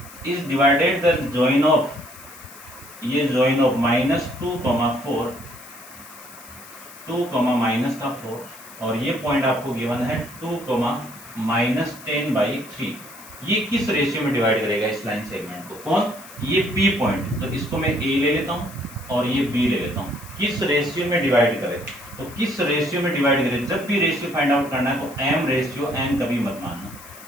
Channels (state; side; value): noise; left; hiss, 18 dB below the sound